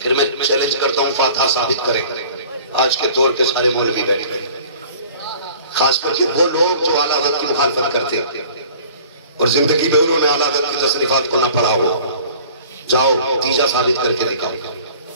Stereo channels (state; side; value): inverted; both; correlation -0.47